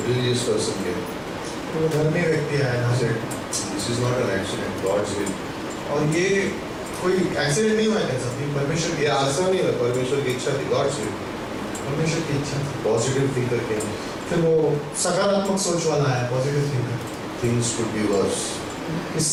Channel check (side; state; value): both; identical; correlation 1.00